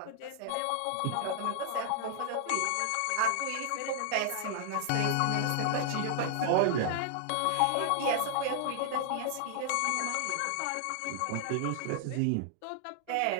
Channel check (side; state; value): both; different; correlation -0.01